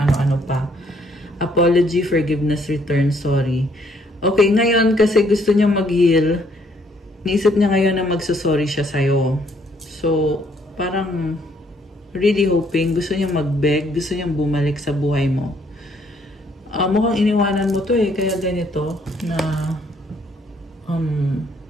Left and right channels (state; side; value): normal; both; correlation 0.67